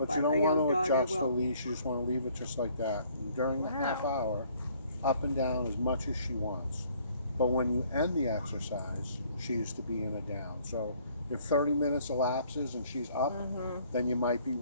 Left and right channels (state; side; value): inverted; both; correlation -0.61